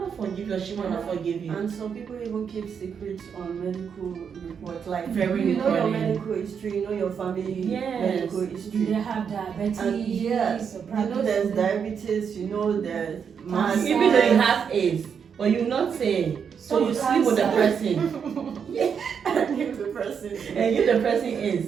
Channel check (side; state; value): left; quieter; 7.0 dB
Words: forgive you or she might not forgive you. And some people even keep secrets on medical reports. Like, very you know your medical history, you know your family medical history. They have diabetes. And you know there's diabetes, you know there's even though you have AIDS, but you not say. So you sleep with the person. And give the person. And give the person